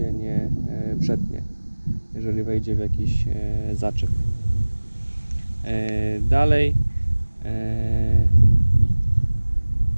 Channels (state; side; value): inverted; both; correlation -1.00